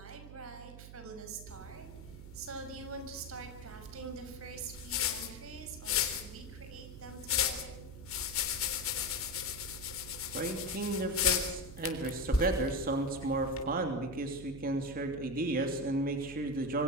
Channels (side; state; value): right; noise; hum, 13 dB below the sound